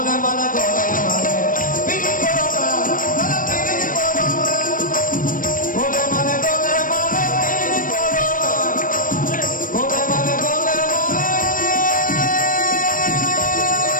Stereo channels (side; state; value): right; late; 0.40 ms